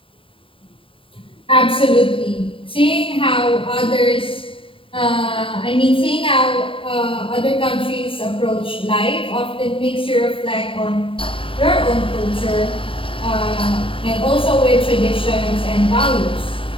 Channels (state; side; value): late; right; 0.25 ms